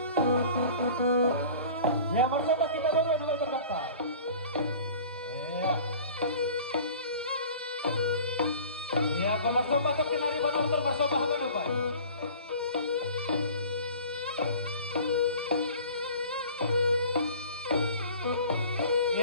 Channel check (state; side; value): inverted; both; correlation -0.44